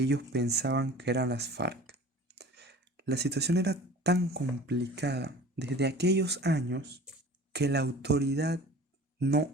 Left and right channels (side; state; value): both; normal; correlation 0.43